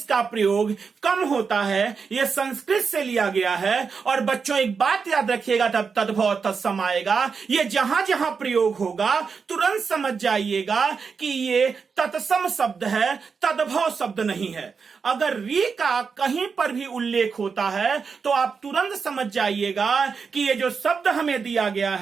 प्रयोग कम होता है, यह संस्कृत से लिया गया है। और बच्चों एक बात याद रखिएगा, तब तद्भव तत्सम आएगा, ये जहां जहां प्रयोग होगा तुरंत समझ जाइएगा कि ये तत्सम शब्द है, तद्भव शब्द नहीं है। अगर री का कहीं पर भी उल्लेख होता है तो आप तुरंत समझ जाइएगा कि ये जो शब्द हमें दिया गया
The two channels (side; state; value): left; quieter; 5.5 dB